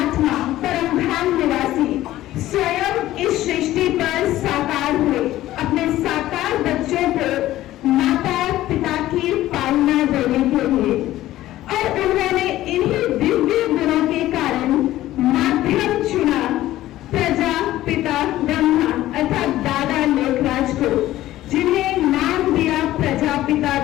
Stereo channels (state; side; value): quieter; right; 14.9 dB